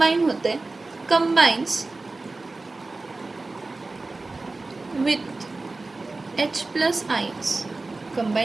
होतं आहे, combines with H plus ions,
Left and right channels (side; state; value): left; quieter; 3.4 dB